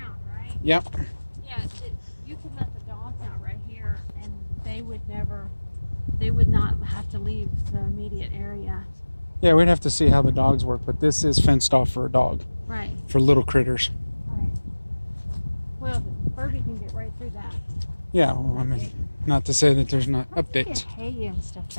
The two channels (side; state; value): both; inverted; correlation -1.00